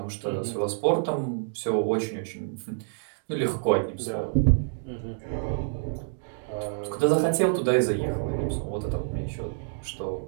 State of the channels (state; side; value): silent; left; digital silence